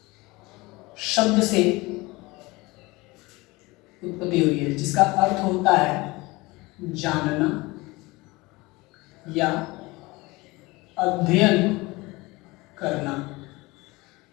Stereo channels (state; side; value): quieter; right; 22.6 dB